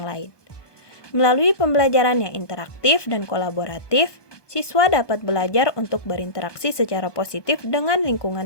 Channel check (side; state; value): right; late; 1.2 ms